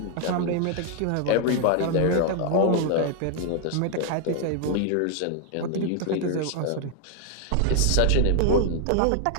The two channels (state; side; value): different; both; correlation 0.00